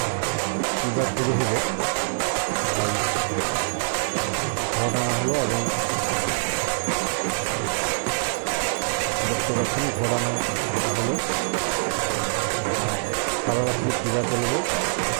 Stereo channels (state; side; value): silent; left; digital silence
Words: হলো এবং দেখতে পাচ্ছেন ঘোরানো হলো সারা রাত্রি পূজা চলবে